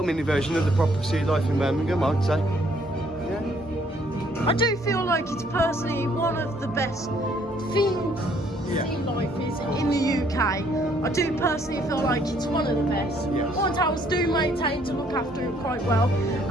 mini version of the proper sea life in Birmingham, I'd say. I do feel like it's personally one of the best themed sea lifes in the UK. I do personally feel like it's one of the best. Alton Towers do maintain to look after it quite well.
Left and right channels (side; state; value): both; normal; correlation 0.65